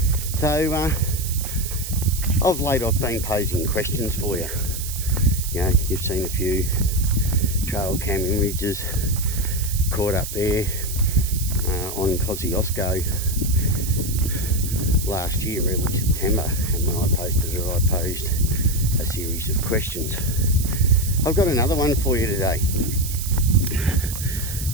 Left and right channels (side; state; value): right; noise; hiss, 7 dB below the sound